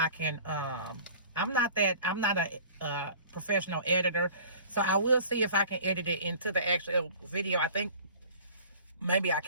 can. I'm not a professional editor, so I will see if I can edit it into the actual video. I think maybe I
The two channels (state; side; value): inverted; both; correlation -0.45